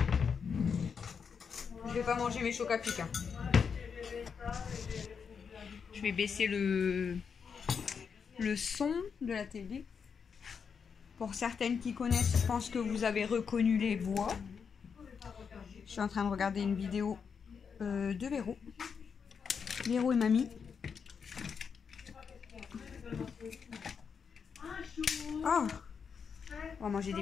Je vais pas manger mes chocs à pic. Je vais baisser le son de la télé. Pour certaines qui connaissent, je pense que vous avez reconnu les voix. Je suis en train de regarder une vidéo de Véro. Véro et mamie. Oh, on va manger des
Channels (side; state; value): right; quieter; 6.3 dB